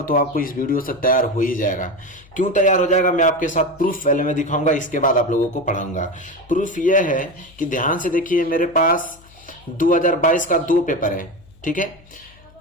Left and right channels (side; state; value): left; noise; hum, 26 dB below the sound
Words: तो आपको इस वीडियो से तैयार हो ही जाएगा। क्यों तैयार हो जाएगा, मैं आपके साथ प्रूफ पहले में दिखाऊंगा, इसके बाद आप लोगों को पढ़ाऊंगा। प्रूफ यह है कि ध्यान से देखिए, मेरे पास 2022 का 2 पेपर है, ठीक है।